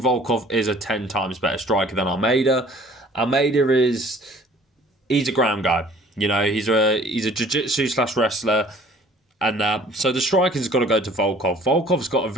Volkov is a 10 times better striker than Almeida. Almeida he's a ground guy. You know, he's a jiu-jitsu / wrestler. And so the striking's got to go to Volkov. Volkov's got a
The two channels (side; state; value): both; normal; correlation 0.53